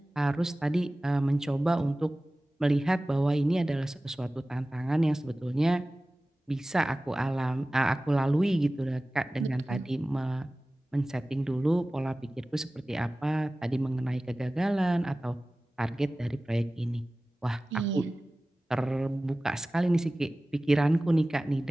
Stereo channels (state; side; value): normal; both; correlation 0.97